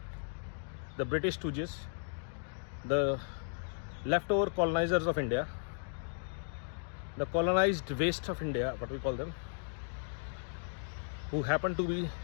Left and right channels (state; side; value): silent; right; digital silence